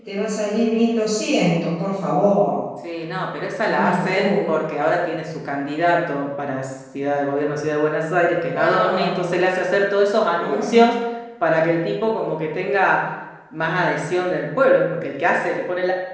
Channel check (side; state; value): both; identical; correlation 1.00